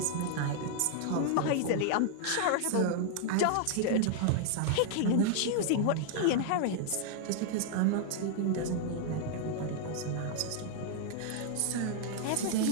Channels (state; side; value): different; both; correlation 0.00